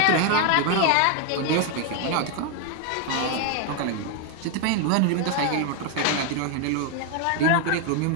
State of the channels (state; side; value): different; both; correlation 0.01